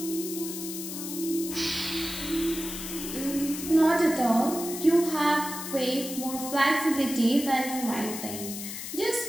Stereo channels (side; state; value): left; noise; hiss, 8 dB below the sound